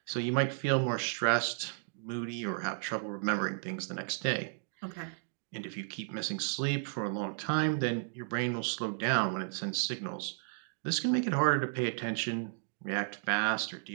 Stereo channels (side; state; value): left; silent; digital silence